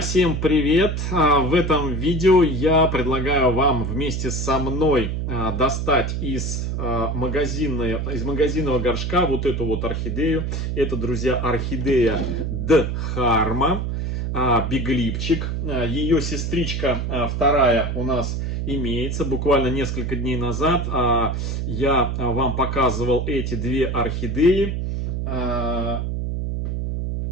всем привет! В этом видео я предлагаю вам вместе со мной достать из магазинного горшка вот эту вот орхидею. Это, друзья, орхидея Дхарма, биглипчик. Ее сестричка вторая у нас имеется. Буквально несколько дней назад я вам показывал эти две орхидеи.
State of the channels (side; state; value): right; noise; hum, 2 dB below the sound